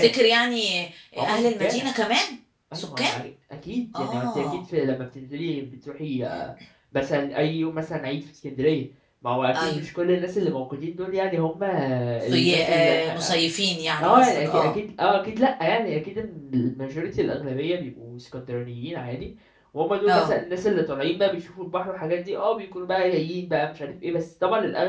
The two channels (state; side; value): identical; both; correlation 1.00